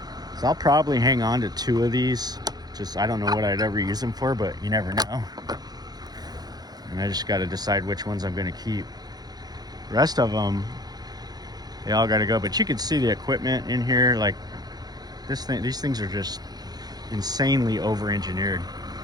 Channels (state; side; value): late; left; 0.19 ms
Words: So I'll probably hang on to 2 of these. Just, I don't know what I'd ever use them for, but you never know. And I just got to decide which ones I'm going to keep. The rest of them, they all got to go. But you can see the equipment in here. Like this thing, these things are just insanely over-engineered.